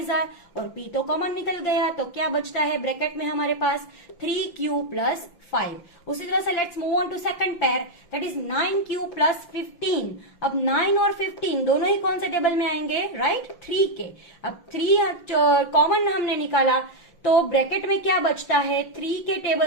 और p तो कॉमन निकल गया, तो क्या बचता है ब्रैकेट में हमारे पास 3q प्लस 5। उसी तरह से let's move on to second pair, that is 9q plus 15। अब 9 और 15 दोनों ही कौन से टेबल में आएंगे, राइट 3 के। अब 3 कॉमन हमने निकाला तो ब्रैकेट में क्या बचता है, 3 के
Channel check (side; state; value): right; late; 5.8 ms